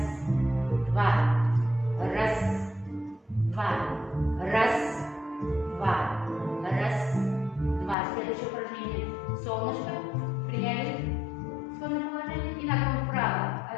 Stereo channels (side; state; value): right; drops out; at 8.0 s